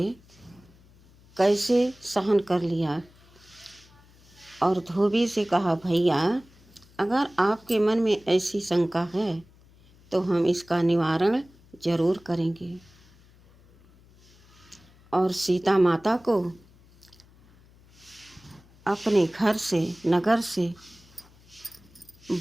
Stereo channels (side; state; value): left; noise; hum, 27 dB below the sound